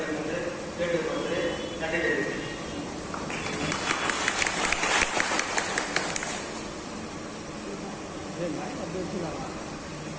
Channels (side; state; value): both; identical; correlation 1.00